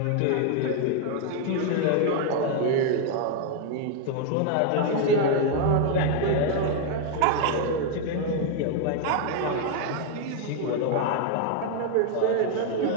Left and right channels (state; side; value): different; both; correlation 0.00